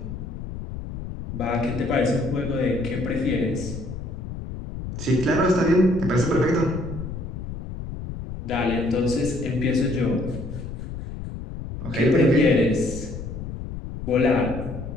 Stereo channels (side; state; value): left; noise; rumble, 8 dB below the sound